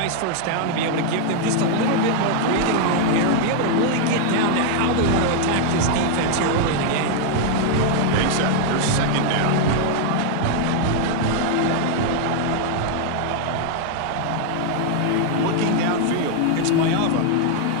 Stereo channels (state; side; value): different; both; correlation 0.00